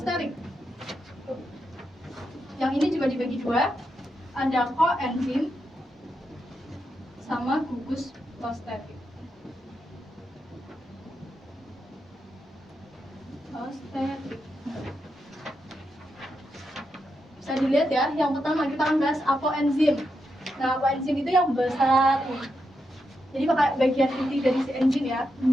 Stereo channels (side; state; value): both; normal; correlation 0.85